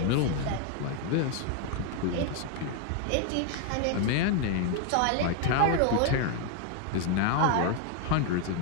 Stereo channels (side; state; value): both; different; correlation 0.01